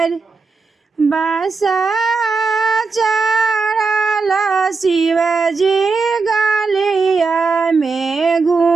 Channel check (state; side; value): quieter; left; 4.4 dB